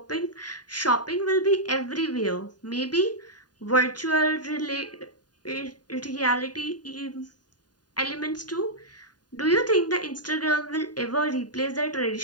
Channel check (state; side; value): late; right; 0.70 ms